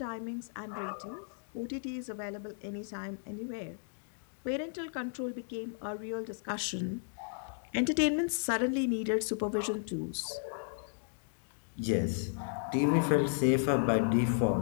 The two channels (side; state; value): right; silent; digital silence